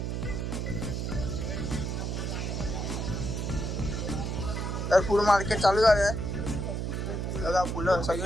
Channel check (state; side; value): noise; right; hum, 2 dB below the sound